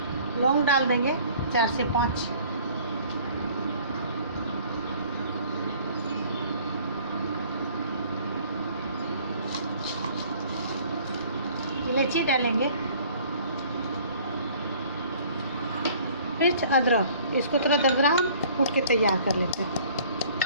लौंग डाल देंगे 4 से 5, इलायची डालेंगे, मिर्च, अदरक, इसको थोड़ा दरदरा कूट के तैयार कर लेते हैं।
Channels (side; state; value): both; inverted; correlation -0.53